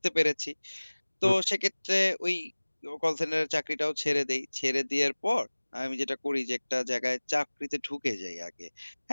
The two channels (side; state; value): both; inverted; correlation -1.00